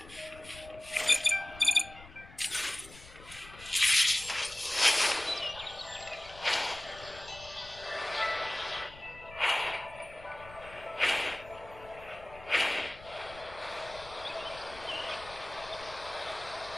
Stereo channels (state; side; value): noise; left; rumble, 19 dB below the sound